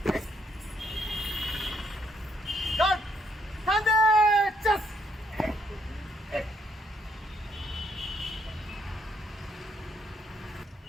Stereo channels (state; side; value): normal; both; correlation 0.72